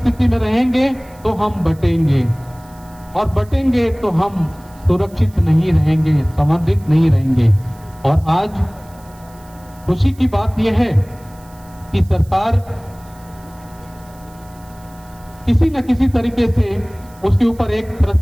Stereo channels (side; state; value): right; noise; hiss, 27 dB below the sound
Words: में रहेंगे तो हम बटेंगे, और बटेंगे तो हम सुरक्षित नहीं रहेंगे, संवर्धित नहीं रहेंगे। और आज खुशी की बात यह है कि सरकार किसी न किसी तरीके से उसके ऊपर एक तरह